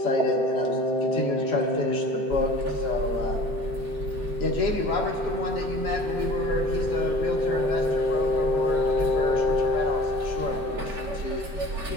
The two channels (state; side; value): normal; both; correlation 0.43